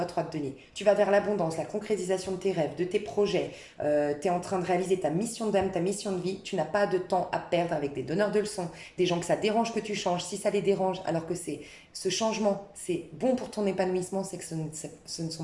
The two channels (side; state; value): both; identical; correlation 1.00